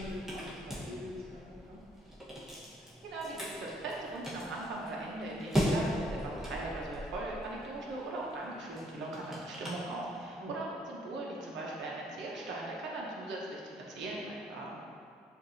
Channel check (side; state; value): both; normal; correlation 0.66